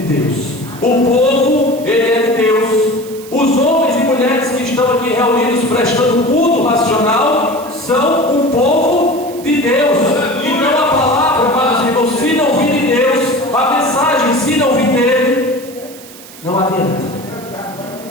Deus. O povo, ele é de Deus. Os homens e mulheres que estão aqui reunidos prestando culto racional são um povo de Deus. E não a palavra, mas irmãos, se não vir de Deus, a mensagem, se não vir dele, não adianta.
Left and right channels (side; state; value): right; noise; hiss, 19 dB below the sound